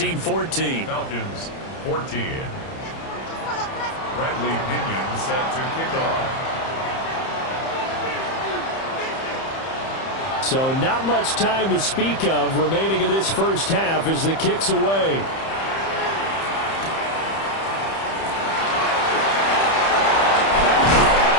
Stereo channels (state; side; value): late; right; 30 ms